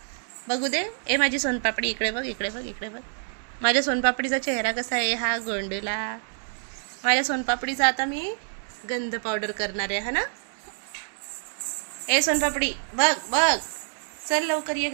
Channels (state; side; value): silent; left; 60 dB below the other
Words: बघू दे. ए माझी सोनपापडी, इकडे बघ, इकडे बघ, इकडे बघ. माझ्या सोनपापडीचा चेहरा कसा आहे, हा गोंडला. माझ्या सोनपापडीचा आता मी गंध पावडर करणार आहे, हा ना. ए सोनपापडी, बघ बघ, चल लवकर ये,